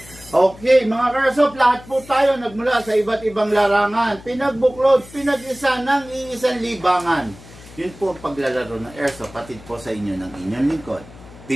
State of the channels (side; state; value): left; noise; hum, 20 dB below the sound